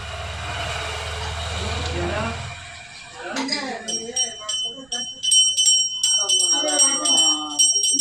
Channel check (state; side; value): noise; right; rumble, 29 dB below the sound